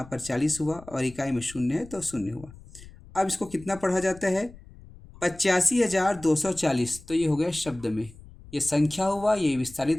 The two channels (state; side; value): noise; left; rumble, 20 dB below the sound